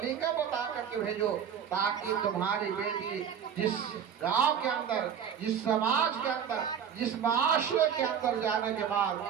بتا کر کے بھیجو، تاکہ تمہاری بیٹی جس گاؤں کے اندر، جس سماج کے اندر، جس معاشرے کے اندر جانے کے بعد،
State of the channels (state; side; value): quieter; left; 8.1 dB